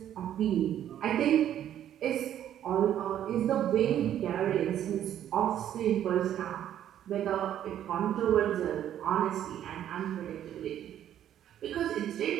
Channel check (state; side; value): quieter; left; 10.9 dB